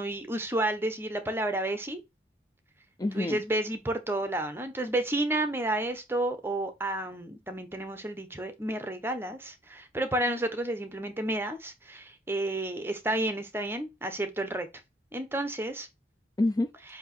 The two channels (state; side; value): normal; both; correlation 0.61